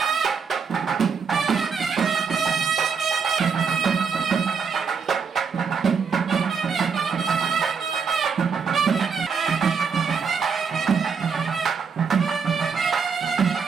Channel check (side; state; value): left; quieter; 5.9 dB